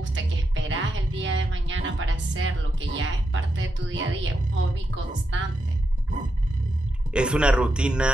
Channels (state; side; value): normal; both; correlation 0.85